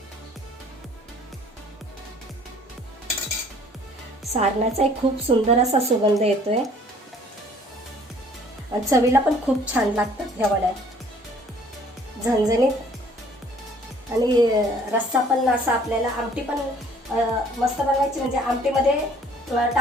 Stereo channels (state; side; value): normal; both; correlation 0.56